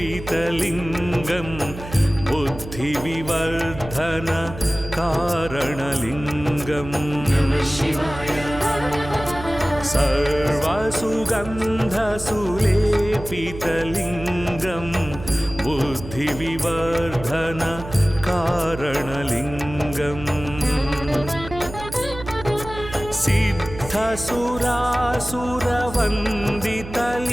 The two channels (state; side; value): noise; right; hum, 12 dB below the sound